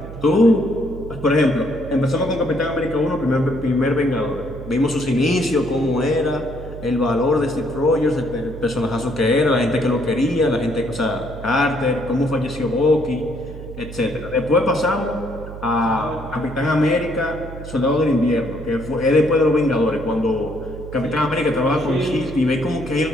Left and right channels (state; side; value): noise; right; hum, 12 dB below the sound